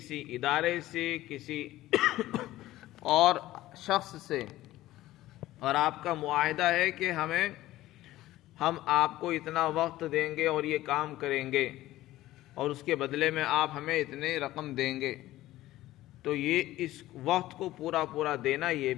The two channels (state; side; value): quieter; right; 15.8 dB